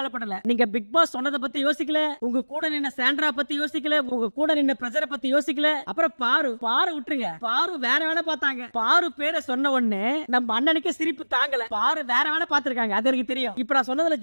நீங்க பிக் பாஸ் சொன்னதை பத்தி யோசிக்கல, உங்க கூட நின்ன சாண்ட்ரா பத்தி யோசிக்கல, உங்க கூட நின்ன பிரஜரை பத்தி யோசிக்கல. அப்புறம் பாரு விட்டுருங்க. பாரு வேற வேலை பார்த்தாங்க. பாரு பேரை சொன்ன உடனே நம்ம அண்ணனுக்கு சிரிப்பு தாங்கல. பாரு வேற வேலை பார்த்திருக்காங்க, அது எனக்கு தெரியும். இப்ப நான் சொன்னதுல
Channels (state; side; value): inverted; both; correlation -1.00